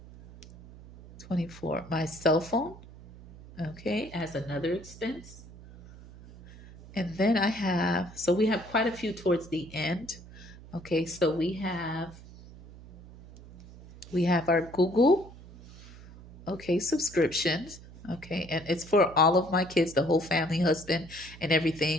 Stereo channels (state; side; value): noise; right; hum, 18 dB below the sound